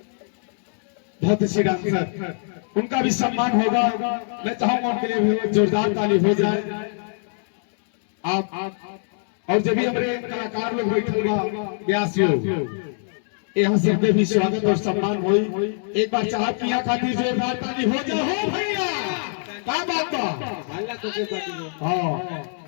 अच्छी डांसर उनका भी सम्मान होगा। मैं चाहूंगा उनके लिए जोरदार ताली हो जाए। आप और जब भी हमारे कलाकार लोग बैठे यहाँ से भी स्वागत और सम्मान हो। एक बार चाह की यहाँ खातिर जोरदार ताली हो जाए। हो भैया क्या बात बा।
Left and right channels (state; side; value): silent; right; digital silence